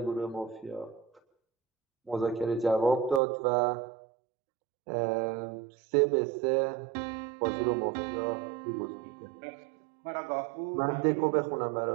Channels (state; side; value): drops out; left; at 3.2 s